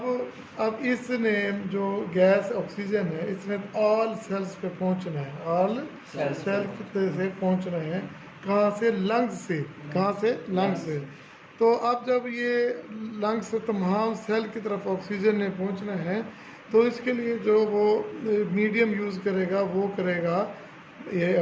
इसने जो गैस ऑक्सीजन है इसने ऑल सेल्स पे पहुंचना है, ऑल सेल्स से पहुंचना है। कहाँ से? लंग्स से। कहाँ से? लंग्स से। तो अब जब ये लंग्स से तमाम सेल की तरफ ऑक्सीजन ने पहुंचना है तो इसके लिए जो वो मीडियम यूज़ करेगा वो करेगा ये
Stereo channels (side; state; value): both; identical; correlation 1.00